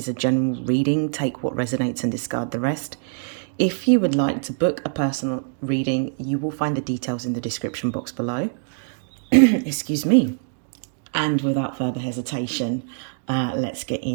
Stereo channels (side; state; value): left; silent; digital silence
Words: a general reading. Take what resonates and discard the rest. If you would like to book a personal reading, you will find the details in the description box below. Excuse me. And without further hesitation, let's get